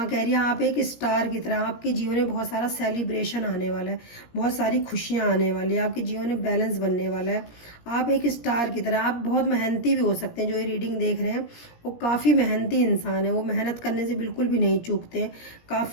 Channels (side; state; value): right; late; 17 ms